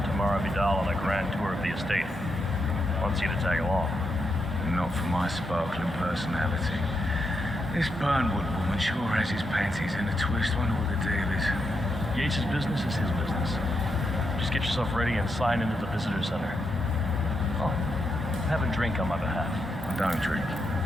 Tamara Vidal on a grand tour of the estate. Wants you to tag along. Not for my sparkling personality. This Burnwood woman sure has his panties in a twist. Wonder what the deal is. Yates' business is his business. Just get yourself ready and sign into the visitor center. Oh, have a drink on my behalf. I don't drink.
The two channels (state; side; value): normal; both; correlation 0.83